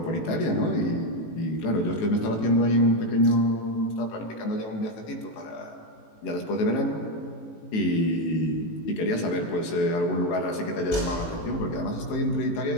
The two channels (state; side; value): late; right; 18 ms